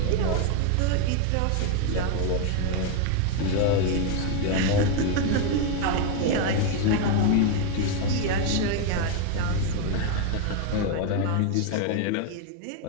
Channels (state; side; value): different; both; correlation 0.01